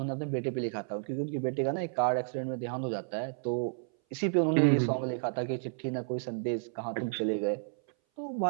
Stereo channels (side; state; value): left; silent; 57 dB below the other